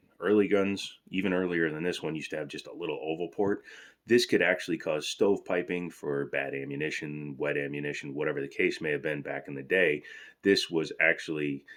Early guns, even earlier than this one, used to have just a little oval port. This could actually cause stovepiping for bad ammunition, wet ammunition, whatever the case may have been back in the day. This was actually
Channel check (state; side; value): identical; both; correlation 1.00